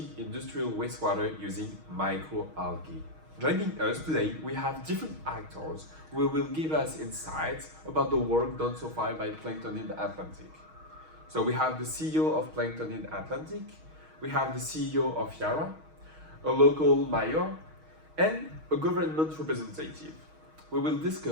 industrial wastewater using microalgae. Joining us today, we have different actors who will give us insights about the work done so far by Planktonid Atlantic. So we have the CEO of Planktonid Atlantic, we have the CEO of Yara, a local mayor, and a government representative. We will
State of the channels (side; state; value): left; late; 6.4 ms